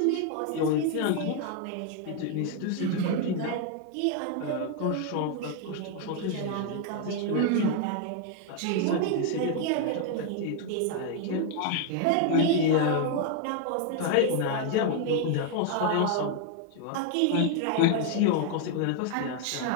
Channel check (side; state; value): both; different; correlation 0.00